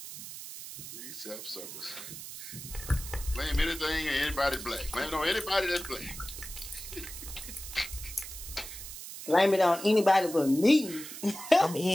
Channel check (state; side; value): noise; right; hiss, 11 dB below the sound